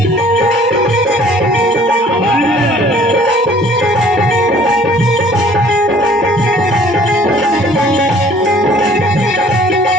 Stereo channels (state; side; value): normal; both; correlation 0.54